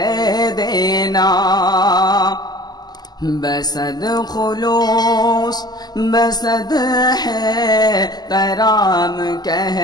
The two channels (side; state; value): right; late; 0.20 ms